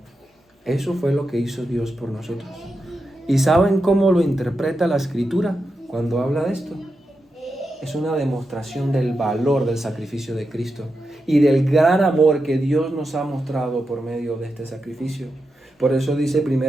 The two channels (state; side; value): normal; both; correlation 0.88